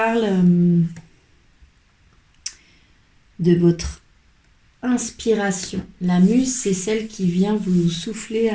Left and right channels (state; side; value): identical; both; correlation 1.00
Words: de votre inspiration. La muse, c'est celle qui vient vous souffler